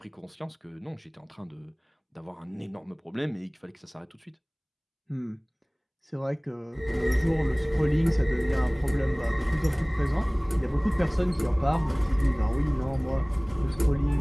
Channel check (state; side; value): identical; both; correlation 1.00